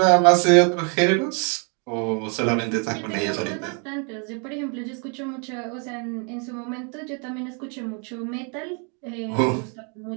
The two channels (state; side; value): quieter; left; 37.6 dB